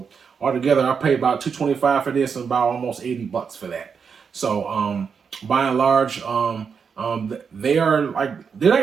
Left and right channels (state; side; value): quieter; left; 6.2 dB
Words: altogether I paid about $225 for this and about almost $80 for that. So by and large, they're not